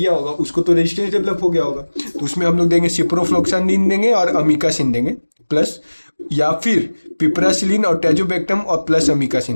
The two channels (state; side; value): inverted; both; correlation -1.00